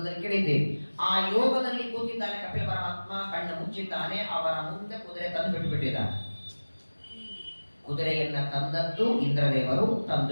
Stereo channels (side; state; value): both; inverted; correlation -1.00